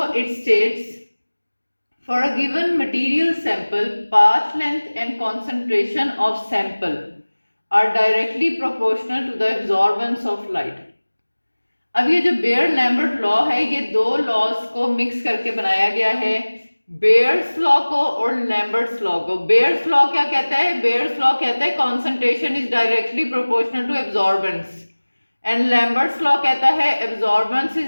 it states, for a given material sample, path length and concentration of sample are directly proportional to the absorbance of light. अब ये जो bear Lambert law है, ये दो laws को mix करके बनाया गया है, बेयर्स लॉ को और लैम्बर्ट्स लॉ को। बेयर्स लॉ क्या कहता है? बेयर्स लॉ कहता है concentration is directly proportional to absorbance, and Lambert's law कहता है absorbance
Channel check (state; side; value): inverted; both; correlation -1.00